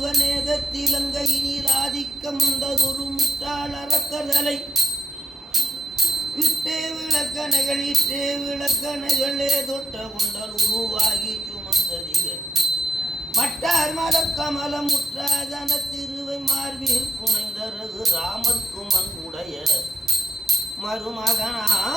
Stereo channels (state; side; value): normal; both; correlation 0.83